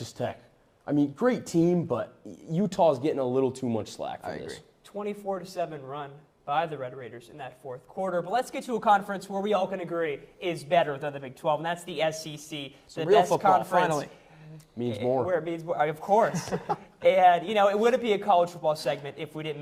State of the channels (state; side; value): identical; both; correlation 1.00